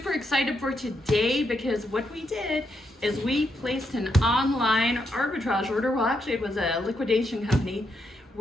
excited for today because what we did is we placed an online arbitrage order. Well, actually it was a liquidation company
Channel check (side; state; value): both; normal; correlation 0.80